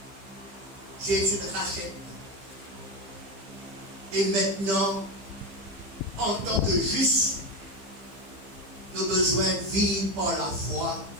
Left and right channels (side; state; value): left; late; 15 ms